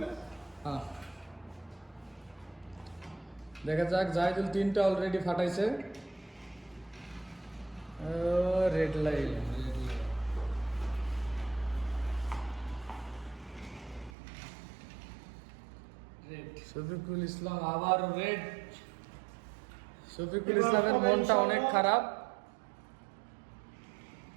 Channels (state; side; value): drops out; left; at 14.1 s